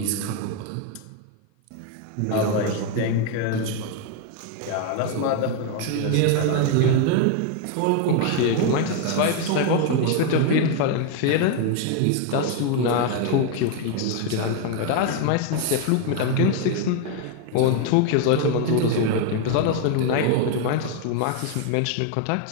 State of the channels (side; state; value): both; different; correlation 0.01